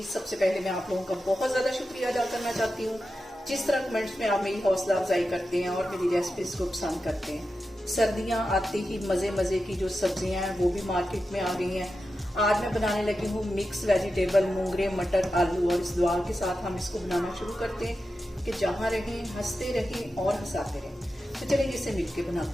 सबसे पहले मैं आप लोगों का बहुत ज़्यादा शुक्रिया अदा करना चाहती हूँ जिस तरह कमेंट्स में आप मेरी हौसला अफजाई करते हैं और मेरी रेसिपीज को पसंद करते हैं। सर्दियाँ आते ही मज़े मज़े की जो सब्जियाँ हैं वो भी मार्केट में आ गई हैं। आज मैं बनाने लगी हूँ मिक्स वेजिटेबल मूंगरे मटर आलू, और इस दुआ के साथ हम इसको बनाना शुरू करते हैं कि जहाँ रहें हंसते रहें और हंसाते रहें। तो चलिए इसे मिल के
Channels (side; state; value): both; normal; correlation 0.91